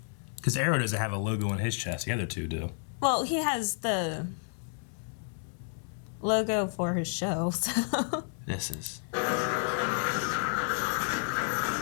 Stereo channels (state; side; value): silent; right; 57 dB below the other